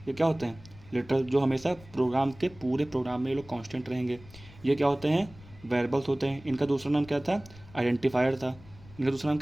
ये क्या होते हैं, लिटरल, जो हमेशा प्रोग्राम के पूरे प्रोग्राम में ये लोग कांस्टेंट रहेंगे। ये क्या होते हैं, वेरिएबल्स होते हैं। इनका दूसरा नाम क्या था, आइडेंटिफायर था। इनका दूसरा नाम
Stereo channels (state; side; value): noise; left; rumble, 21 dB below the sound